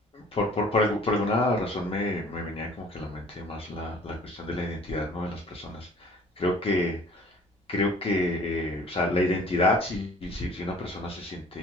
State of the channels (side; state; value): both; normal; correlation 0.52